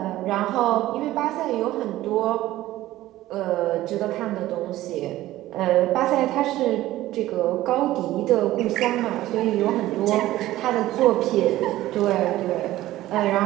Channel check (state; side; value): quieter; left; 15.5 dB